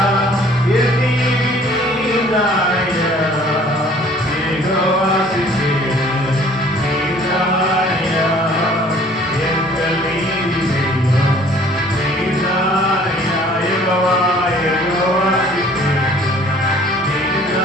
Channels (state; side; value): normal; both; correlation 0.54